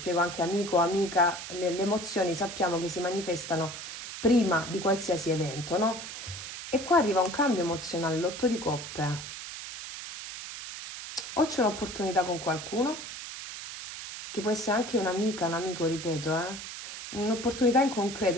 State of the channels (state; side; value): noise; right; hiss, 9 dB below the sound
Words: anche amico, amica, le emozioni sappiamo che si manifestano prima di qualsiasi evento, no? E qua arriva un cambio emozionale, l'otto di coppe. O c'è un'opportunità con qualcuno, che può essere anche un'amica, un amico, ripeto, un'opportunità in concreto,